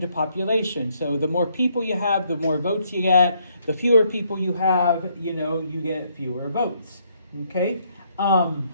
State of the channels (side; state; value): both; inverted; correlation -0.71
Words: to population. So the more people you have, the more votes you get. The fewer people you have, you get fewer votes. Okay? So